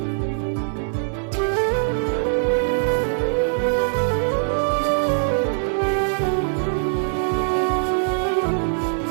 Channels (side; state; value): left; silent; 64 dB below the other